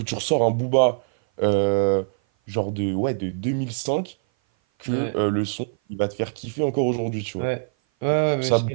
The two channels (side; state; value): left; silent; 57 dB below the other